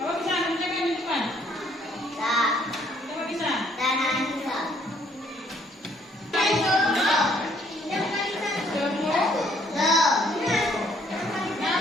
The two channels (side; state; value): both; normal; correlation 0.65